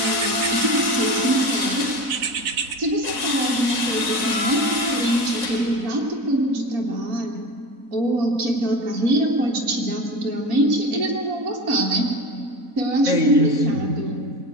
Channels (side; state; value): left; late; 4.0 ms